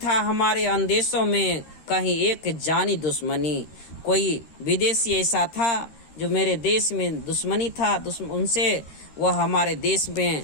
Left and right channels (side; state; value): right; late; 13 ms